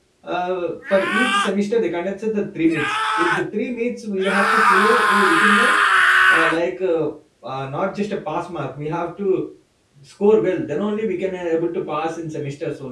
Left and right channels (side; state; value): both; identical; correlation 1.00